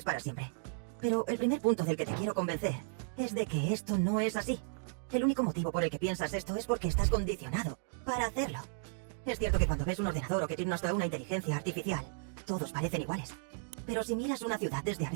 para siempre. Pero el primer punto del que te quiero convencer es de que esto no es así. El único motivo por el que piensas esto es porque estás condicionado para hacerlo. Es cierto que cuando ves un ordenador o que tiene hasta una inteligencia artificial, todos parecen iguales. Pero si miras una ciudad desde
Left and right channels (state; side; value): silent; left; digital silence